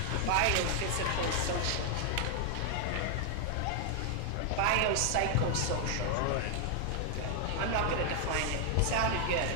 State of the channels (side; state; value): both; different; correlation 0.00